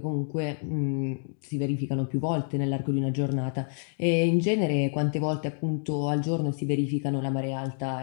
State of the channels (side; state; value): right; silent; 57 dB below the other